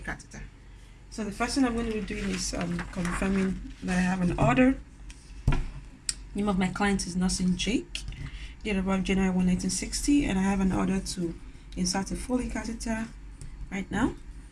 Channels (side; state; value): both; identical; correlation 1.00